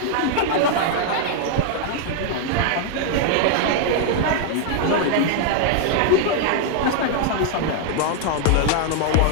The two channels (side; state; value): both; different; correlation 0.00